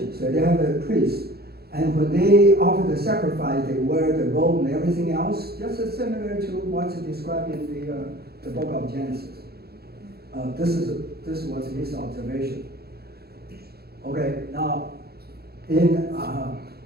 so they have a priest. And when they offer the sacrifice, they wear the robe and everything else, just as similar to what's described in the book of Genesis. This was his observation. Okay, now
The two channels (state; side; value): late; left; 0.46 ms